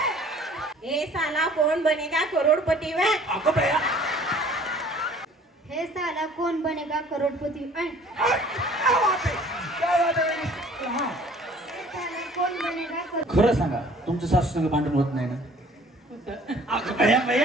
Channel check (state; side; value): normal; both; correlation 0.53